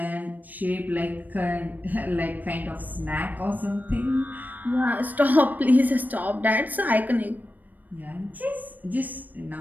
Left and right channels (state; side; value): late; left; 0.084 ms